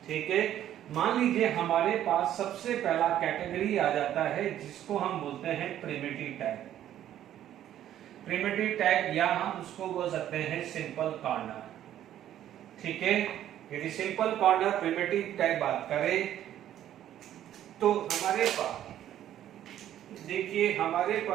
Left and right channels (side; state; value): left; quieter; 11.6 dB